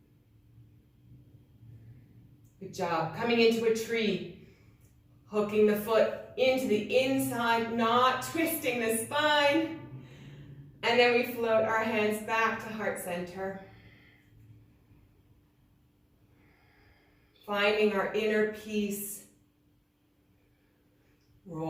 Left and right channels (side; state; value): both; identical; correlation 1.00